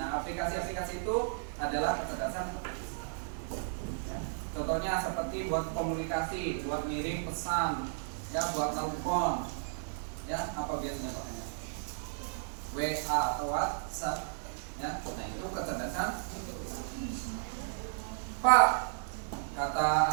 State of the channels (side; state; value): left; silent; digital silence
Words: aplikasi-aplikasi itu adalah kecerdasan artifisial. Ya. Contohnya seperti buat komunikasi, buat ngirim pesan, ya, buat telepon. Ya, apa biasanya pakainya? WA atau WhatsApp. Ya, nah itu kecerdasan. Pak, kata